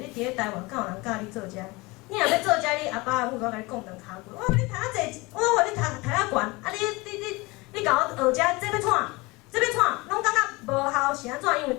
伫咧台湾敢有人教你做遮？你若要做遮，你阿爸阿母我甲你讲两骹句，我你读啊济，我互你读啊悬，啊你甲我学遮，这要创？这要创，拢感觉无效是安怎？因为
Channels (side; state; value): right; quieter; 23.9 dB